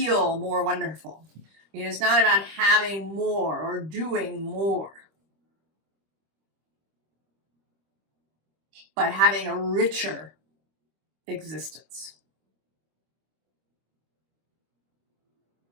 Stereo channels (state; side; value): late; left; 25 ms